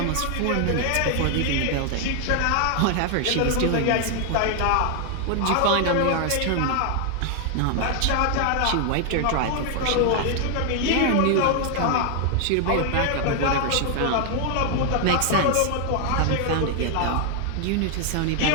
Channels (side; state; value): both; different; correlation 0.00